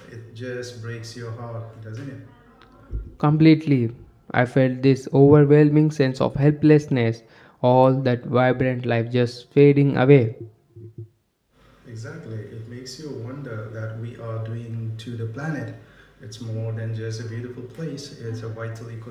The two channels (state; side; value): identical; both; correlation 1.00